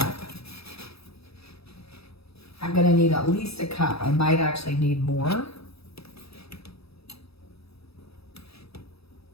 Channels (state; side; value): late; right; 0.77 ms